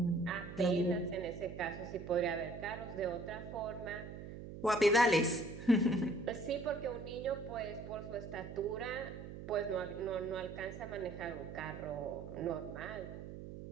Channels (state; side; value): noise; right; hum, 10 dB below the sound